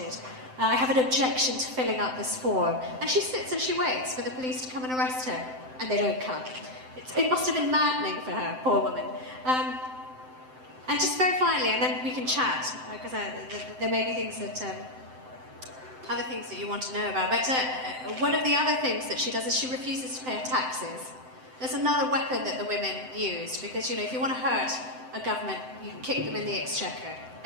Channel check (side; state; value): left; late; 7.8 ms